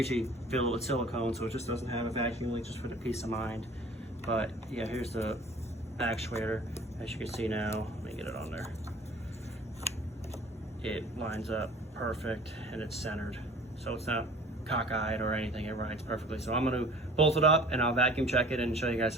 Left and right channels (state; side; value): normal; both; correlation 0.47